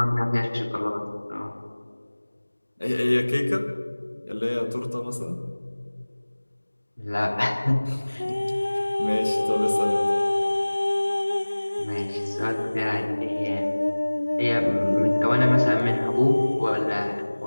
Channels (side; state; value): both; inverted; correlation -1.00